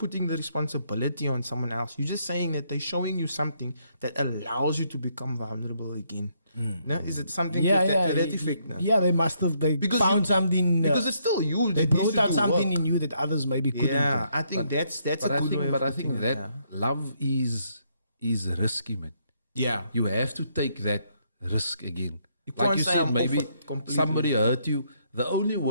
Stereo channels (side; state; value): both; inverted; correlation -0.73